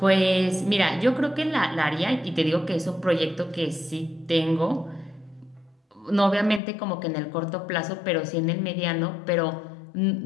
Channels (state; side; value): drops out; right; at 6.6 s